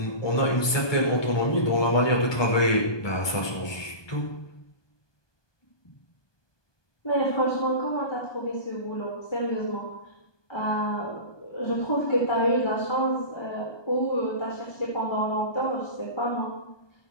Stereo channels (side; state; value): right; late; 1.2 ms